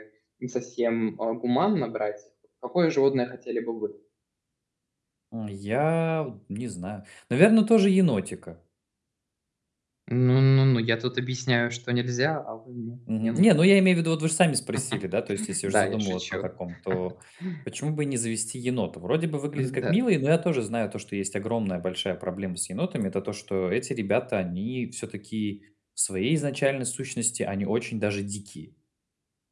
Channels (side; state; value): both; identical; correlation 1.00